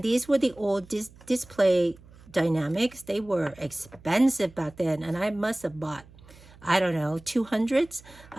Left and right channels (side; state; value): right; noise; hum, 23 dB below the sound